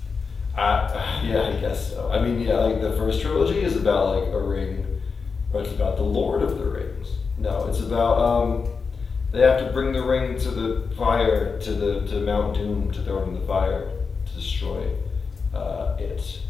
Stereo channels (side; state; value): right; quieter; 5.1 dB